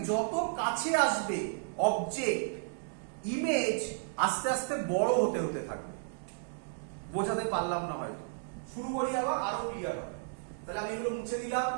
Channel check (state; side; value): silent; left; digital silence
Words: যত কাছে আসবে অবজেক্ট, ইমেজ আস্তে আস্তে বড় হতে থাকবে। বোঝাতে পারলাম না হয়তো। শুরু করি আবার, আরো ক্লিয়ার হবে। তাহলে আমি এগুলো মুছে দিলাম।